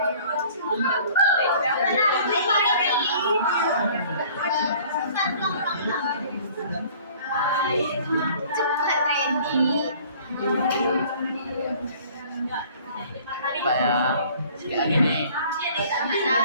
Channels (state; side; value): inverted; both; correlation -0.51